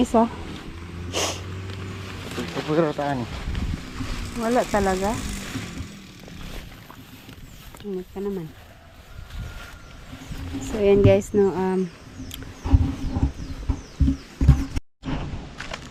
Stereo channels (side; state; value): both; identical; correlation 1.00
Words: Pagpagirataan. Wala talaga. Ingat ka naman. So yan guys, no,